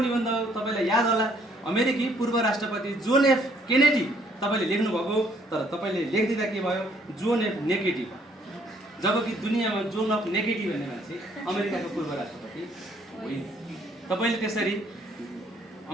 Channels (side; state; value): both; normal; correlation 0.65